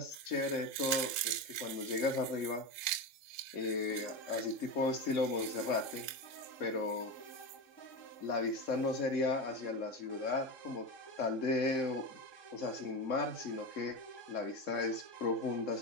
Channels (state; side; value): late; right; 3.7 ms